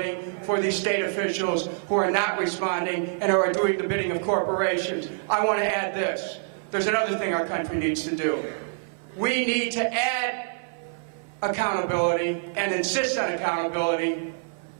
for these state officials who are not responding and are doing the bidding of corporations. I want to add this. There's another thing our country needs to do. We need to add accountability and insist on accountability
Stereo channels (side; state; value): left; silent; 57 dB below the other